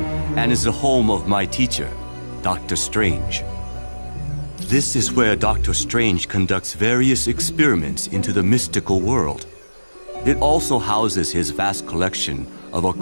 and is the home of my teacher, Dr. Strange. This is where Dr. Strange conducts various experiments into the mystical world. It also houses his vast collection of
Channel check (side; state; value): both; inverted; correlation -1.00